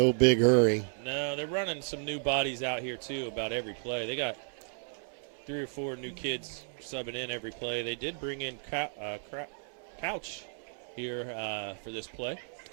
big hurry. No, they're running some new bodies out here, too, about every play. They got 3 or 4 new kids subbing in every play. They did bring in Couch here for this play.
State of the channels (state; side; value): silent; left; digital silence